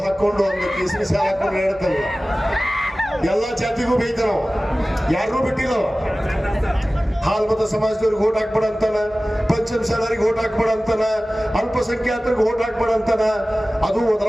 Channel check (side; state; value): both; normal; correlation 0.97